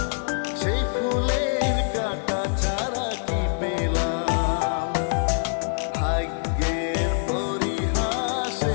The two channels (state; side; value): silent; right; 62 dB below the other